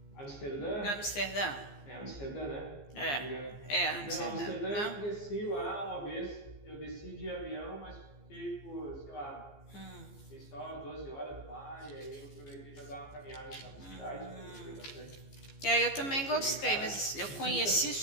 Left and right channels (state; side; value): late; right; 15 ms